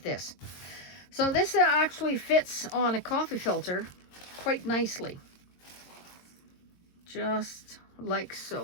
this. So this actually fits on a coffee filter quite nicely. Just like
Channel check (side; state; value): right; late; 22 ms